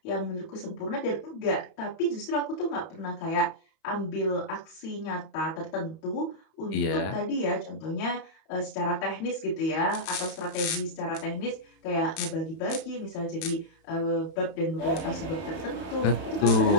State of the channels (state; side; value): late; right; 31 ms